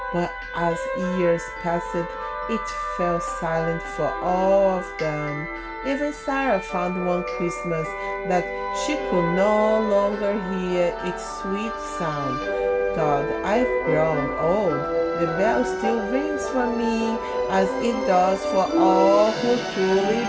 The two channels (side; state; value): both; identical; correlation 1.00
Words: but as years passed, it fell silent for all of them. Even Sarah found one Christmas that she could no longer hear its sweet sound. God, I've grown old. The bell still rings for me as it does for all who truly